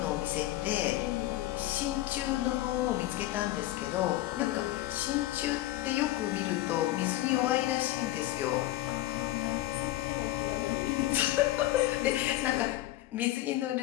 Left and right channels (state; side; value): quieter; right; 16.0 dB